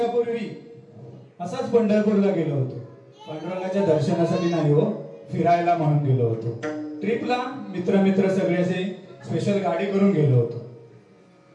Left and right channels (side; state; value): both; identical; correlation 1.00